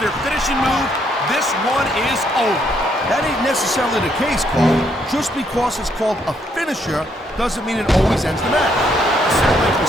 their finishing move, this one is over. That ain't necessarily the case, Cole. Just because it's called a finisher doesn't mean it always ends the match. Certainly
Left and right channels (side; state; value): both; normal; correlation 0.72